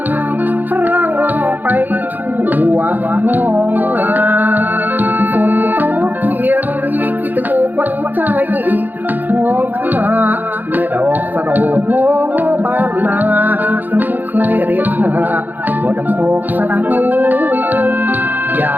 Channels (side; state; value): left; late; 0.086 ms